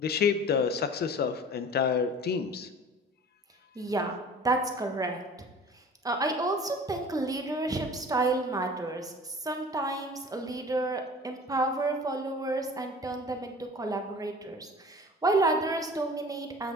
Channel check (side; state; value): both; normal; correlation 0.42